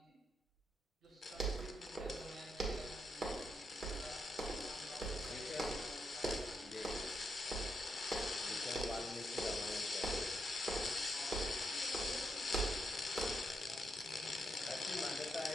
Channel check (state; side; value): normal; both; correlation 0.81